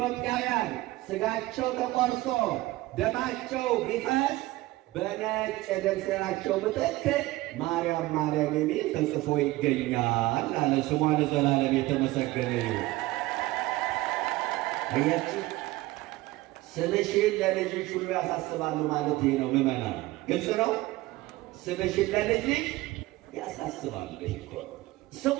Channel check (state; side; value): quieter; left; 18.6 dB